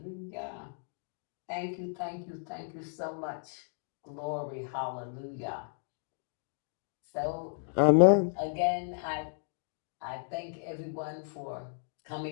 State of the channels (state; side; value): silent; right; digital silence